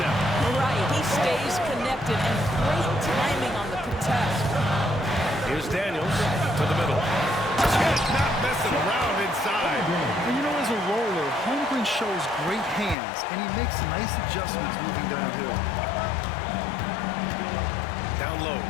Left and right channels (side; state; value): right; drops out; at 13.0 s